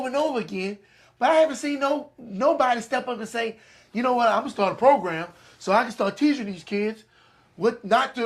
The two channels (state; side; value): identical; both; correlation 1.00